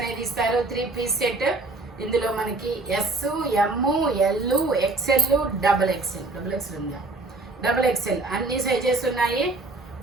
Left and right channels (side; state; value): left; quieter; 3.3 dB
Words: ఇస్తారు. 3 పీస్ సెట్. ఇందులో మనకి S, M, L, XL, double XL ఉందా, డబల్ ఎక్స్ఎల్ అన్ని సైజెస్ ఉన్నాయి.